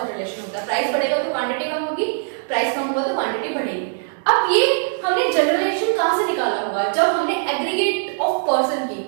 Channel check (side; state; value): left; silent; digital silence